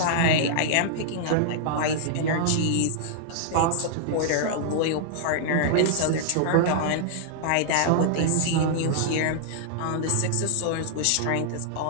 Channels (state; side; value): different; both; correlation -0.01